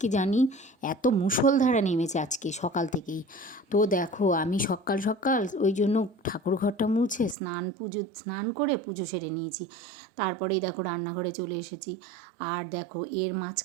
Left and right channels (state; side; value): drops out; left; at 7.4 s